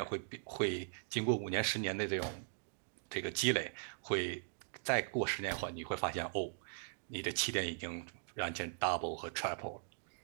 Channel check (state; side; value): silent; left; digital silence